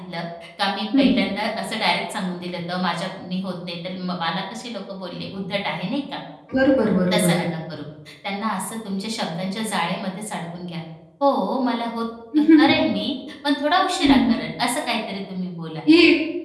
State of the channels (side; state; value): both; identical; correlation 1.00